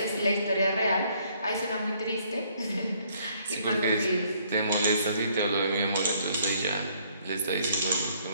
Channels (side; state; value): both; inverted; correlation -0.65